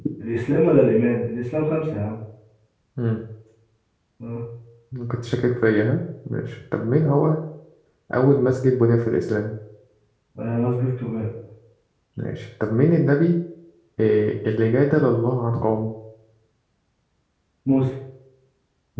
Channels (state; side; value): identical; both; correlation 1.00